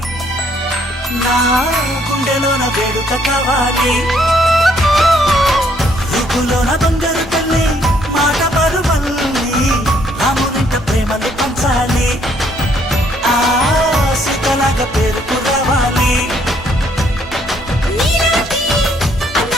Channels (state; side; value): normal; both; correlation 0.68